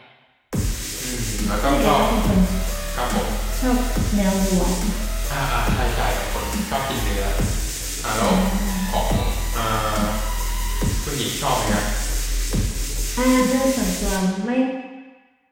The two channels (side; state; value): both; identical; correlation 1.00